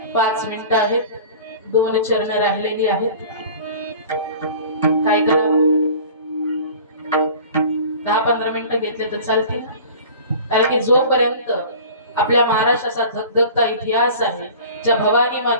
5 मिनिटं आहेत, 2 चरण राहिलेली आहेत. काय करावं? 10-15 मिनिटं घेतले तर चालतील. कारण की जोपर्यंत आपल्या महाराष्ट्राचा धगधगता इतिहास आहे, ज्या भवानी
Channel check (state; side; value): inverted; both; correlation -0.42